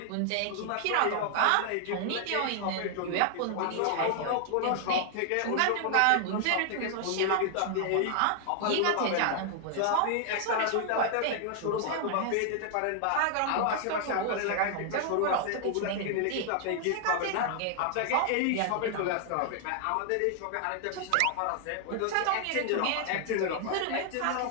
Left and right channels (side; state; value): both; different; correlation 0.00